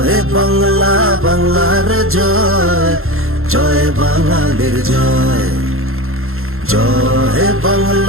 বাংলা, বাংলার জয়, জয় বাঙালির জয়। জয়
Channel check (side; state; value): left; late; 0.61 ms